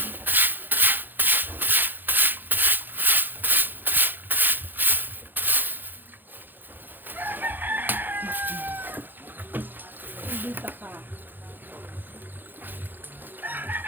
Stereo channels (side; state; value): left; late; 0.091 ms